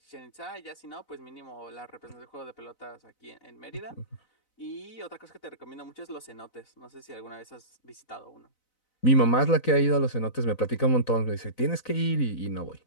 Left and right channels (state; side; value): late; right; 4.0 ms